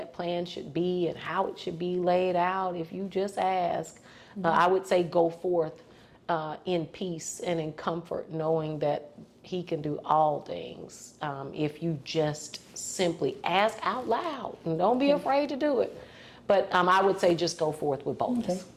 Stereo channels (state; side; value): identical; both; correlation 1.00